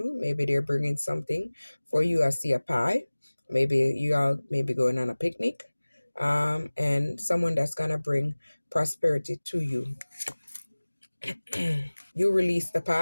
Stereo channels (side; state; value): both; inverted; correlation -1.00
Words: Maybe they're bringing something for you. I see a pie. Maybe you all maybe going on a picnic. And someone that's going to bring prosperity to you. You release the